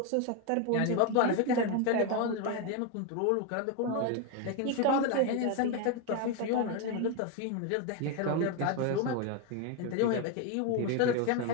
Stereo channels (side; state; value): both; different; correlation 0.02